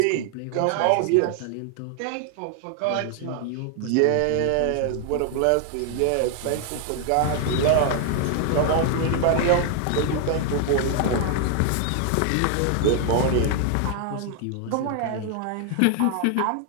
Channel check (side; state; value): both; different; correlation 0.00